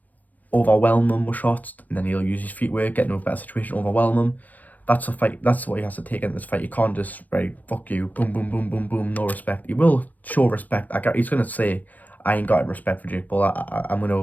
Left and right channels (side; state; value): right; late; 0.081 ms